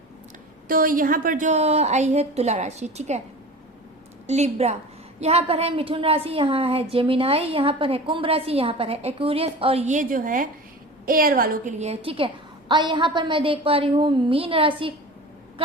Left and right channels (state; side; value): normal; both; correlation 0.35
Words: तो यहाँ पर जो आई है तुला राशि, ठीक है, लिब्रा, यहाँ पर है मिथुन राशि, यहाँ है जेमिनाई, यहाँ पर है कुंभ राशि, यहाँ पर है एक्वेरियस, और ये जो है एयर वालों के लिए है, ठीक है। और यहाँ पर मैं देख पा रही हूँ मीन राशि,